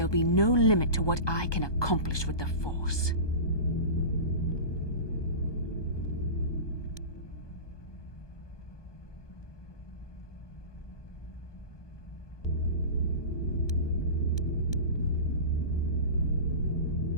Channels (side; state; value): right; late; 1.2 ms